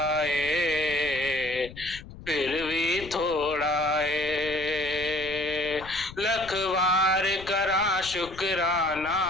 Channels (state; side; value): noise; left; rumble, 16 dB below the sound